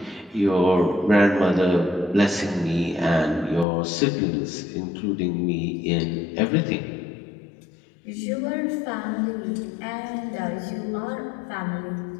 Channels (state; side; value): drops out; right; at 3.7 s